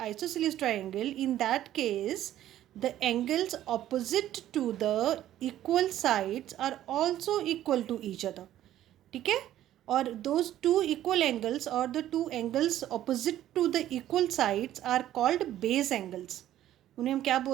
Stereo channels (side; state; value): left; quieter; 12.7 dB